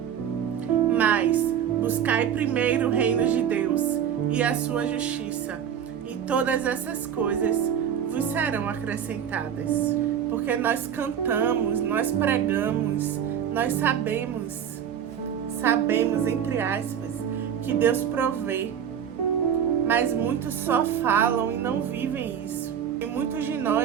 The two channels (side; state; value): left; quieter; 8.8 dB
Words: Mas buscai primeiro o reino de Deus e a sua justiça, e todas essas coisas vos serão acrescentadas. Porque nós cantamos, nós pregamos, nós sabemos, entre aspas, que Deus provê. Mas muitos só falam e não vivem isso. E muitos de